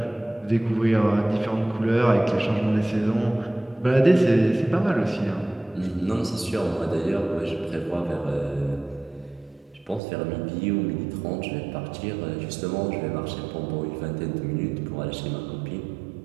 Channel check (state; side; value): drops out; left; at 10.0 s